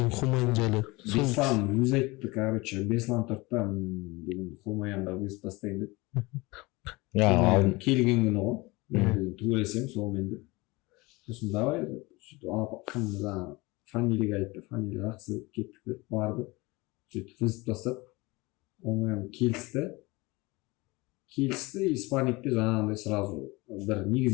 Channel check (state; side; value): quieter; right; 23.4 dB